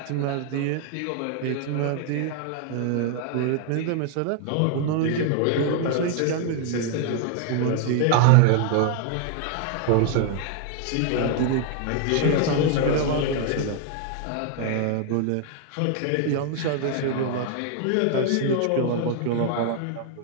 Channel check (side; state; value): both; different; correlation 0.00